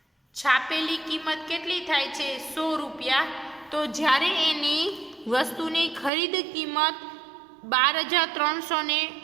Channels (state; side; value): drops out; left; at 6.1 s